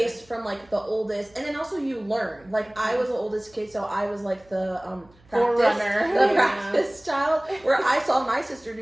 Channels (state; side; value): noise; right; hum, 29 dB below the sound